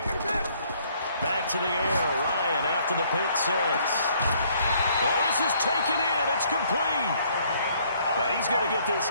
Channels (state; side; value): inverted; both; correlation -0.64